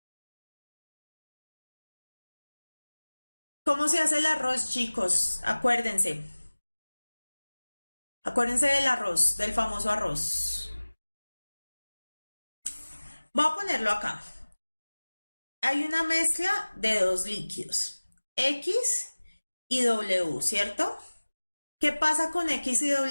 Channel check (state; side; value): inverted; both; correlation -1.00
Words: ¿Cómo se hace el arroz, chicos? Acuérdense. Acuérdense del arroz, del famoso arroz. Voy a ponerlo acá. Hay una mezcla de dos líquidos, X y W, ¿cierto? ¿Qué pasa con X y